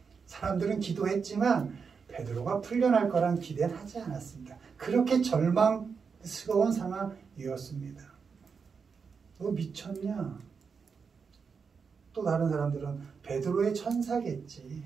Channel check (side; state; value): left; quieter; 5.7 dB